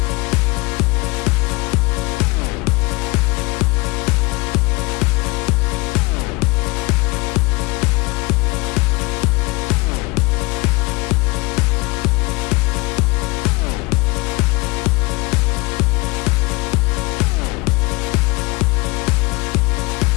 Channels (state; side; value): quieter; right; 24.9 dB